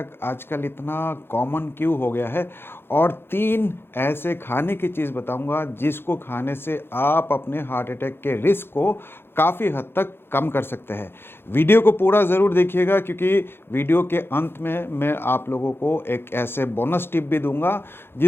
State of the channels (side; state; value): right; late; 0.11 ms